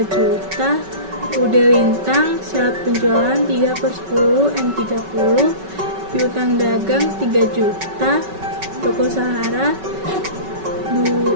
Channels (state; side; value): late; left; 5.3 ms